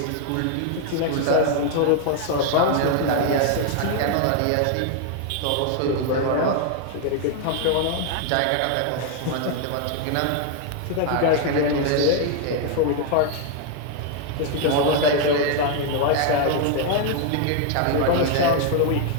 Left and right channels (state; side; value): different; both; correlation 0.00